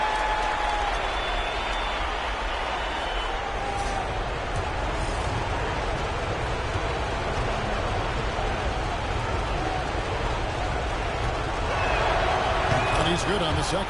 He's good on the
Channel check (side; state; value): both; identical; correlation 1.00